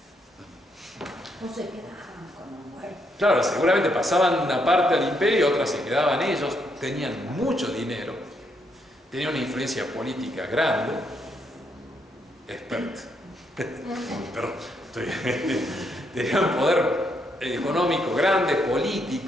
O se quedaban como muertos. Claro, seguramente pasaban una parte al imperio, otra se quedaban ellos, tenían mucho dinero, tenían una influencia política grande, experta. Perdón, tenían un poder económico grande,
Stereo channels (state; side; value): normal; both; correlation 0.76